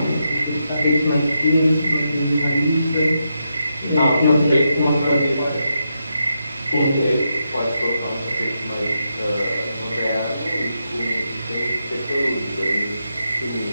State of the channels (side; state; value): both; inverted; correlation -0.84